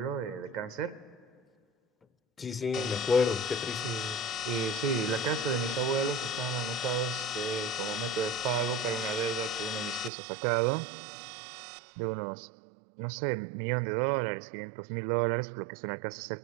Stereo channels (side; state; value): left; drops out; at 10.1 s